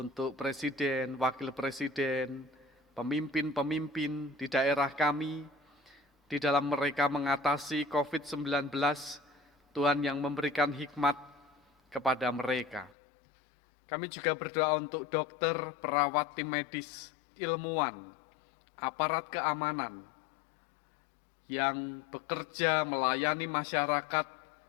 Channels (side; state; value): right; drops out; at 13.0 s